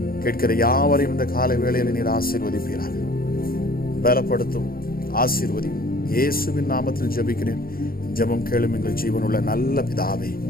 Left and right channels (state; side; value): late; right; 0.43 ms